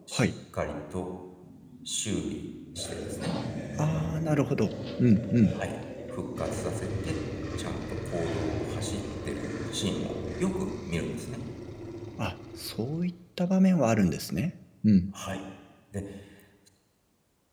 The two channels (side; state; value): both; identical; correlation 1.00